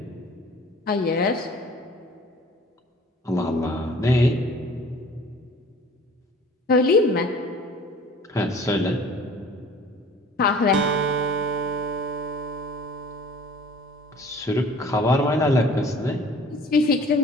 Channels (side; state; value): both; normal; correlation 0.48